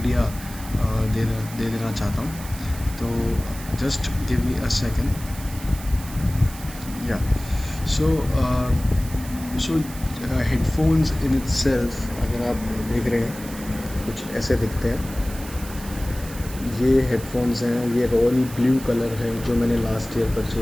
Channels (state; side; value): noise; right; hiss, 15 dB below the sound